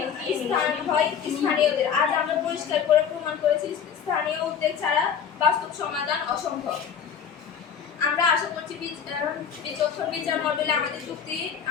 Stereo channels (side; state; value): right; quieter; 7.6 dB